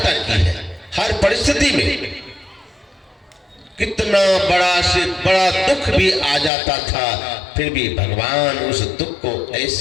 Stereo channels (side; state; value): right; drops out; at 6.5 s